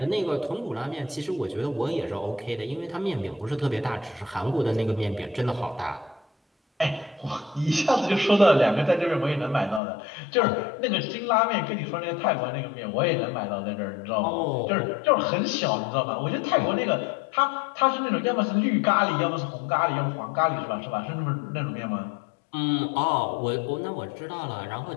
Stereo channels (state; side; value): drops out; right; at 9.8 s